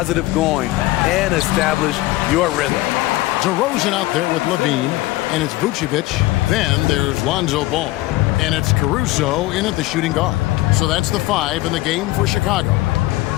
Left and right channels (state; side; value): quieter; right; 18.2 dB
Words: going and establish your rhythm. DeRozan out there with Levine, and it's Vucevic. Then there's Lonzo Ball. And it's Caruso in at the shooting guard. So that's the 5 in the game for Chicago.